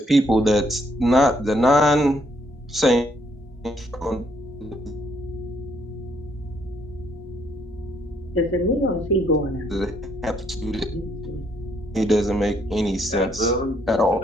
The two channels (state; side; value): normal; both; correlation 0.70